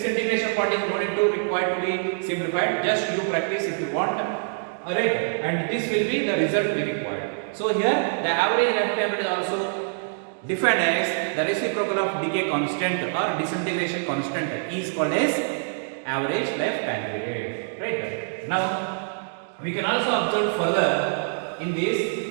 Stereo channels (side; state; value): left; silent; digital silence